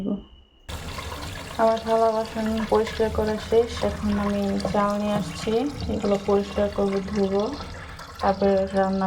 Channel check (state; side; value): identical; both; correlation 1.00